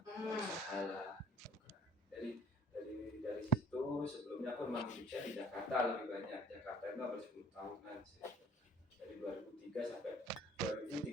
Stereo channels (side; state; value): both; normal; correlation 0.55